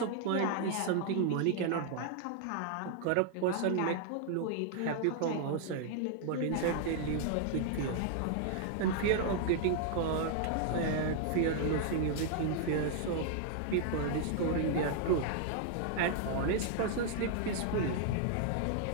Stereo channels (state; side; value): different; both; correlation 0.00